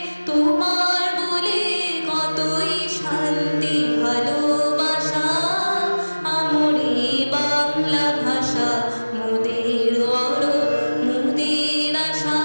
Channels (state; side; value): inverted; both; correlation -1.00